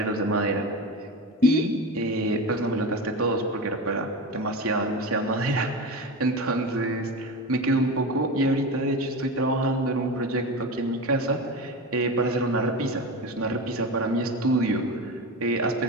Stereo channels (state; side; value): normal; both; correlation 0.24